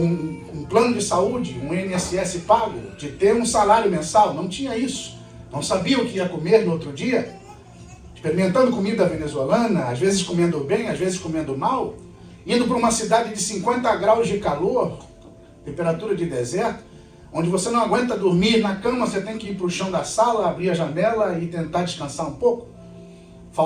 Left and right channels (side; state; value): both; identical; correlation 1.00